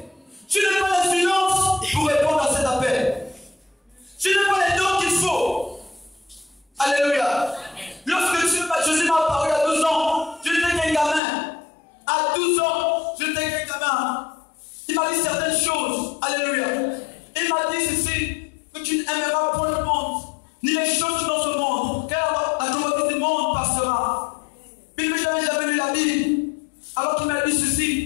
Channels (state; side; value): drops out; right; at 11.2 s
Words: Je n'ai pas la finance pour répondre à cet appel. Je n'ai pas les dons qu'il faut. Alléluia. Lorsque Jésus m'a parlé à 12 ans, je n'étais qu'un gamin. À 12 ans, je n'étais qu'un gamin. Il m'a dit certaines choses. Alléluia. Il m'a dit ceci: que tu n'aimeras pas le monde, ni les choses dans ce monde, car la globalité du monde passera. Puis que je n'avais jamais lu la Bible. Alors qu'il m'a dit